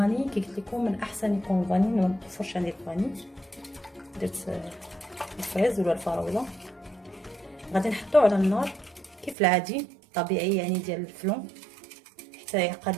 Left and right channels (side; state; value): left; drops out; at 9.3 s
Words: كي قلت لكم من احسن يكون الفاني، ما متوفرش عندي الفاني. درت الفريز ولا الفراوله. غادي نحطو على النار كيف العادي طبيعي يعني ديال الفلون حتى